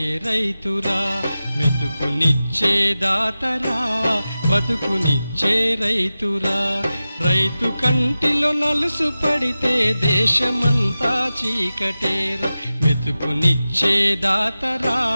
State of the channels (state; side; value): inverted; both; correlation -0.95